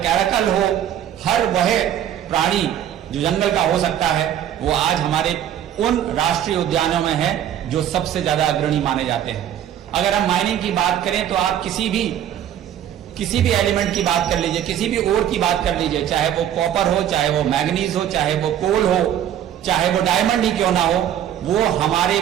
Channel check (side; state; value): left; quieter; 10.5 dB